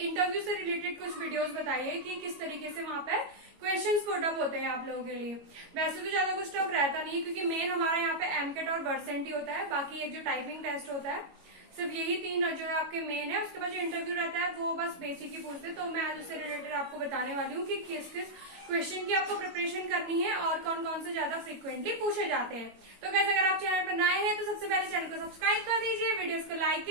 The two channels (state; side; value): late; left; 22 ms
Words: इंटरव्यू से रिलेटेड कुछ वीडियोस बताइए कि किस तरीके से वहां पे क्वेश्चंस पुट अप होते हैं आप लोगों के लिए। वैसे तो ज्यादा कुछ टफ रहता नहीं है क्योंकि मेन हमारा यहाँ पे एमकेट और वर्सेंट ही होता है, बाकी एक जो टाइपिंग टेस्ट होता है सिर्फ यही तीन जो है आपके मेन है। उसके बाद जो इंटरव्यू रहता है वो बस बेसिक ही पूछते हैं। तो मैं आज उससे रिलेटेड आपको बताने वाली हूँ कि किस किस क्वेश्चन की आपको प्रिपरेशन करनी है और कौन कौन से ज्यादा फ्रिक्वेंटली पूछे जाते हैं। तो गाइस अगर आप चैनल पर नए हैं तो सबसे पहले चैनल को सब्सक्राइब कर दीजिए, वीडियोस को लाइक